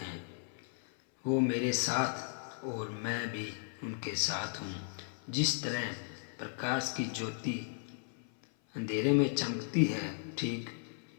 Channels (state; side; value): silent; right; 54 dB below the other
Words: वो मेरे साथ और मैं भी उनके साथ हूँ। जिस तरह प्रकाश की ज्योति अंधेरे में चमकती है, ठीक